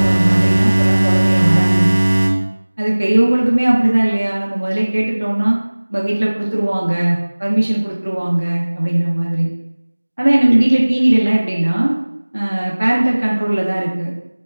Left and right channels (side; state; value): both; inverted; correlation -1.00